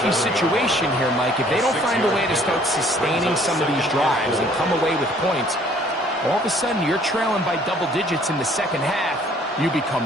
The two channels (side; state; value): both; normal; correlation 0.58